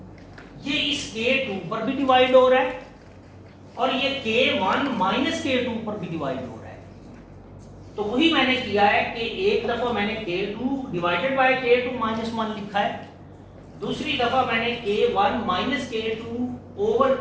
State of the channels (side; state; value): both; identical; correlation 1.00